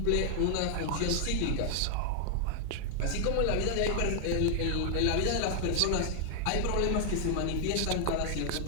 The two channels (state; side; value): different; both; correlation 0.00